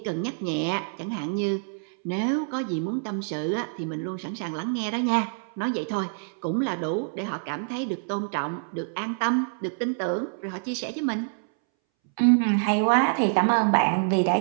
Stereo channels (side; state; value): left; silent; 61 dB below the other